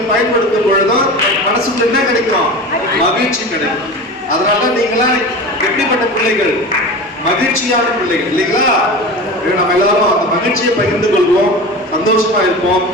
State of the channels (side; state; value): both; normal; correlation 0.31